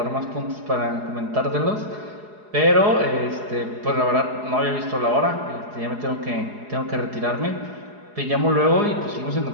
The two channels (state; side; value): late; left; 4.8 ms